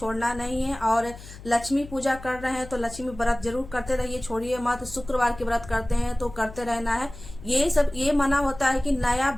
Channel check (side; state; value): left; noise; hum, 16 dB below the sound